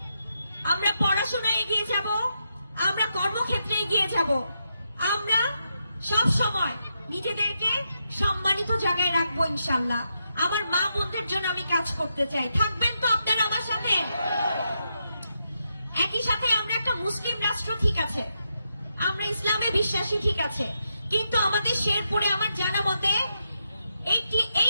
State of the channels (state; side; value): inverted; both; correlation -0.83